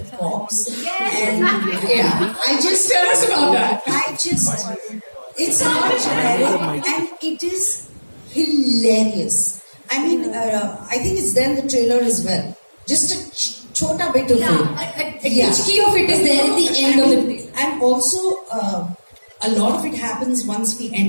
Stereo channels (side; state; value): both; inverted; correlation -1.00